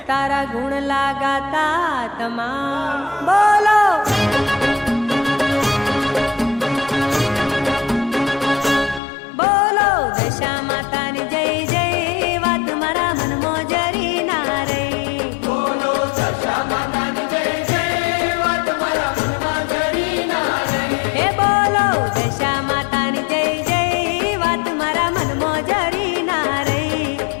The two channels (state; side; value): drops out; right; at 9.0 s